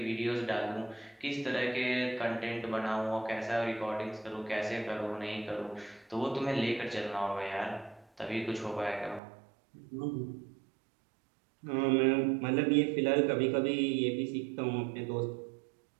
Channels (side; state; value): left; drops out; at 9.2 s